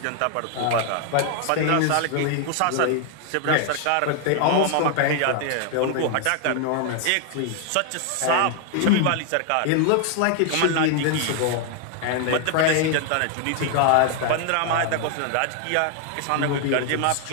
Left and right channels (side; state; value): both; different; correlation 0.00